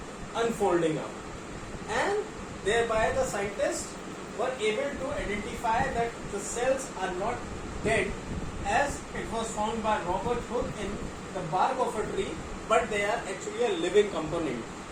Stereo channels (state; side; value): identical; both; correlation 1.00